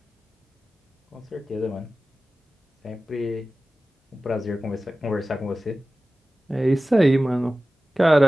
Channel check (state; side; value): normal; both; correlation 0.96